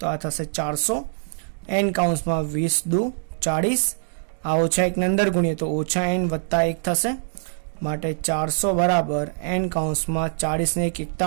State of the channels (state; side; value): silent; left; digital silence